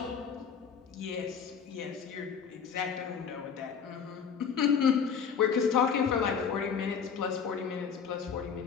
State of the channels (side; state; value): right; quieter; 6.8 dB